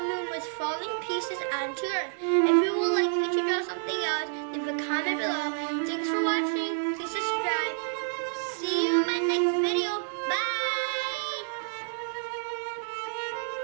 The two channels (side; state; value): left; silent; digital silence